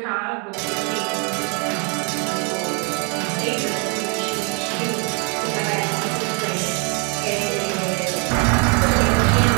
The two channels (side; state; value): left; quieter; 34.9 dB